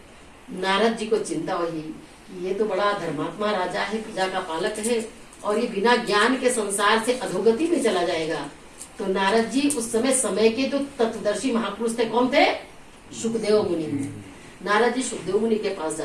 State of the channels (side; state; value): both; identical; correlation 1.00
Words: नारद जी को चिंता हुई, ये तो बड़ा धर्मात्मा राजा है, प्रजा का पालक है, और ये बिना ज्ञान के संसार से अधोगति में चला जाएगा। तो नारद जी उस समय के जो तत्वदर्शी महापुरुष थे, कौन थे? सुखदेव मुनि। नारद जी सुखदेव मुनि के पास